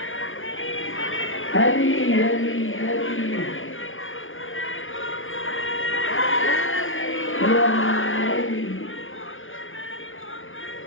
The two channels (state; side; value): late; right; 0.58 ms